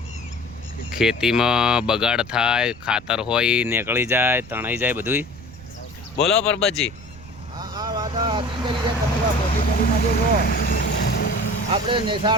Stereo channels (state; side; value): noise; right; rumble, 18 dB below the sound